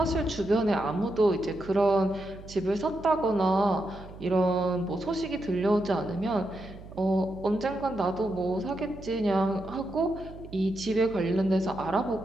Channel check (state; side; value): noise; right; hum, 16 dB below the sound